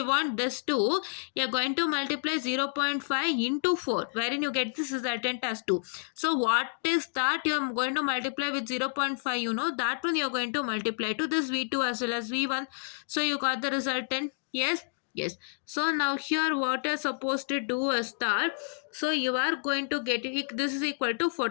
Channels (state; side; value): silent; right; digital silence